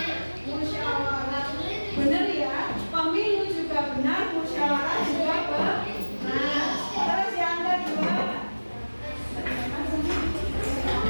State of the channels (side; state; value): both; inverted; correlation -1.00